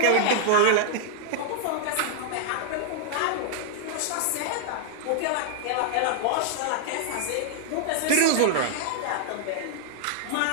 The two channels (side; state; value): both; different; correlation -0.01